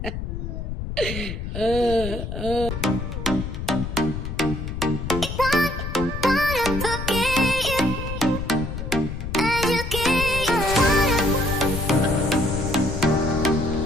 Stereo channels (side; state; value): left; noise; rumble, 5 dB below the sound